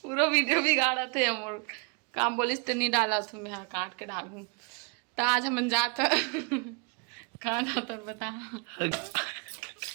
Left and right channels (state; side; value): quieter; left; 35.1 dB